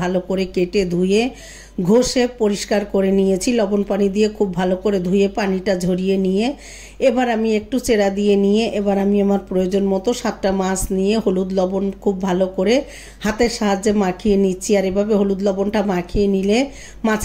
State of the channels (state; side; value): identical; both; correlation 1.00